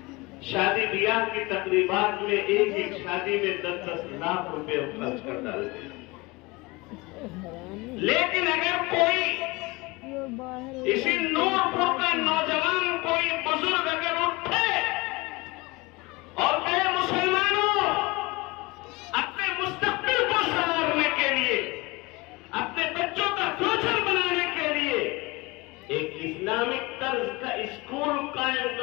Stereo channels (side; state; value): right; quieter; 23.9 dB